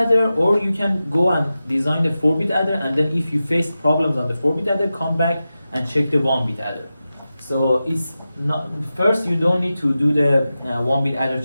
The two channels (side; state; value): both; inverted; correlation -0.93